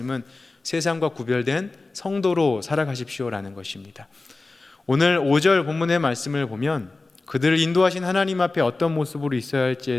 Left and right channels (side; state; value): right; quieter; 3.4 dB